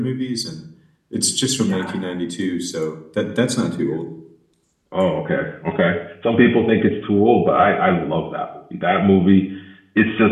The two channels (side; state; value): both; identical; correlation 1.00